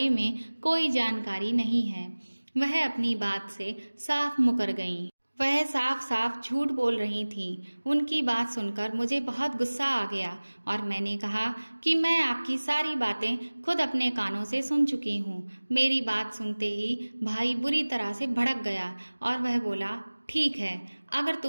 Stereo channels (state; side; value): inverted; both; correlation -1.00